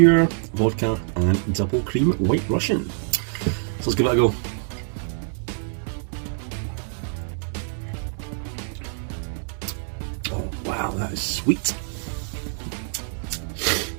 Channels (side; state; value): left; silent; digital silence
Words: vodka and double cream White Russian. So let's give it a go. Oh wow, that is sweet.